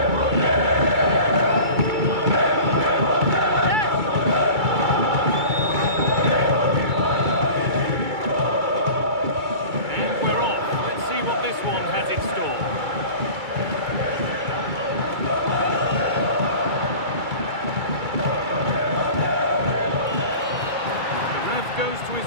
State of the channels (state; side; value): late; left; 2.3 ms